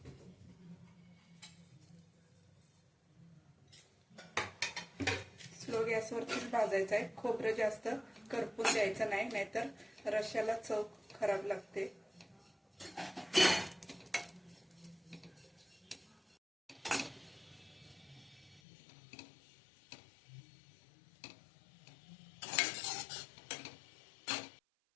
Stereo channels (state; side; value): drops out; right; at 18.6 s